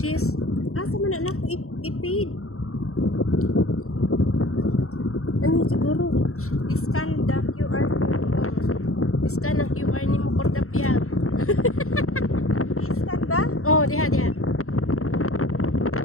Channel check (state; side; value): late; right; 0.63 ms